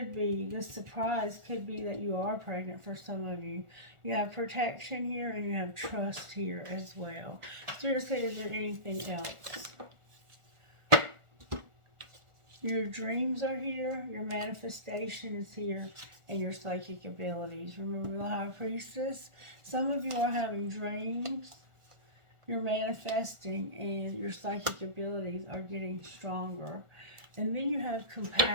be, this surprise could be that you are pregnant for some of you. You have protection here and you have trust here as well. Seriously, is there anything else? Your dreams are here, your manifestation is here, and your psychic abilities. Remember the High Priestess? Some of you are having dreams, you're manifesting, and your psychic abilities are getting stronger. And then you have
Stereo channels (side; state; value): left; late; 1.4 ms